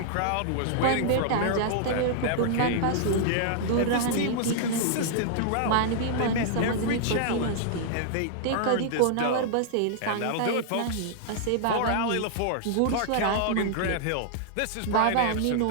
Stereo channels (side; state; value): both; different; correlation -0.01